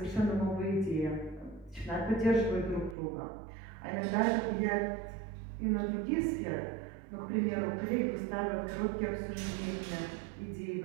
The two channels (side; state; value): left; drops out; at 3.0 s